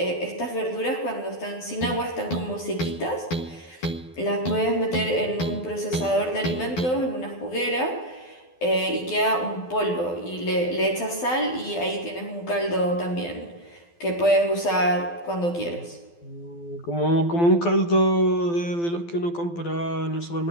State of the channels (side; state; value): right; late; 12 ms